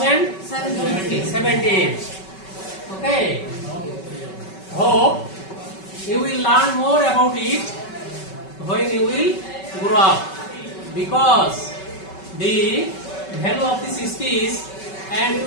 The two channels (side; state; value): right; late; 5.3 ms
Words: Okay. Hope you will learn more about it when you will grow up, because the value of this speech and